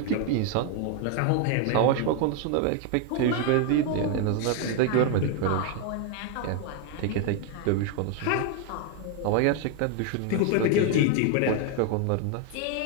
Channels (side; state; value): both; different; correlation 0.01